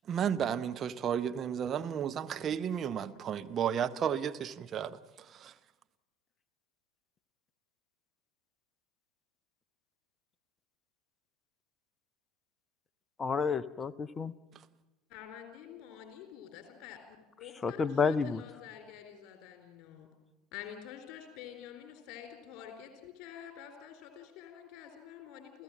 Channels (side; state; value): both; normal; correlation 0.63